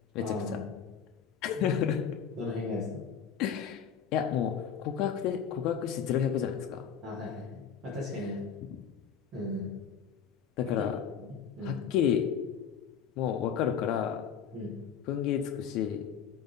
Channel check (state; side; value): quieter; right; 7.5 dB